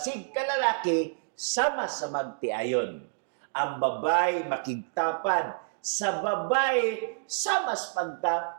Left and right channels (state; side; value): silent; left; digital silence